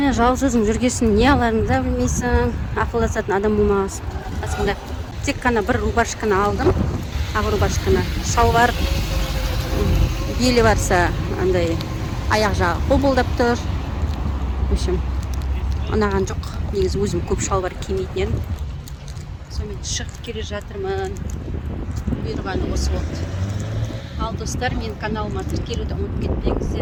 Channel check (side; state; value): both; identical; correlation 1.00